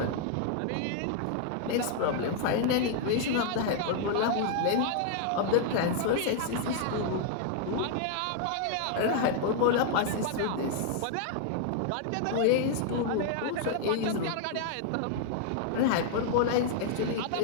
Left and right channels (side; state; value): both; different; correlation -0.01